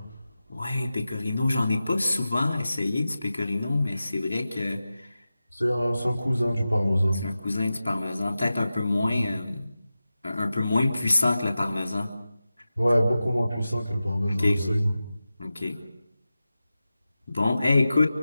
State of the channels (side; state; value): both; inverted; correlation -0.94